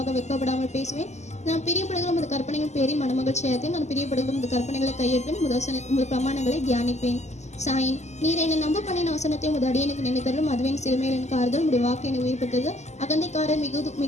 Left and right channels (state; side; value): late; right; 0.33 ms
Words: வெட்கப்படாமல் பேசுவேன். நான் பிரியப்படுகிற முது கற்பனைகள் பேரில் மனமகிழ்ச்சியாக. நான் பிரியப்படுகிற முது கற்பனைகளை கையேற்பேன். முது பிரமாணங்களை தியானிப்பேன். சாயின். நீர் என்னை நம்ப பண்ணின வசனத்தை உமது அடியனுக்கு நினைத்தருளும். அதுவே என் சிறுமையில் எனக்கு ஆறுதல். உடைய வாக்கு என்னை உயிர்ப்பித்தது. அகந்தைக்காரர்